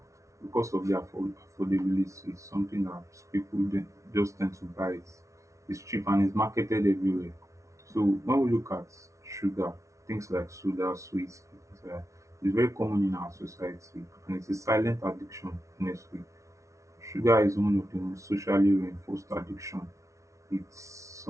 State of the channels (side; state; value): left; late; 0.14 ms